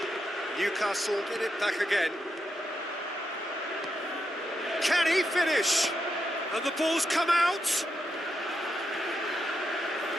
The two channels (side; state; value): both; normal; correlation 0.84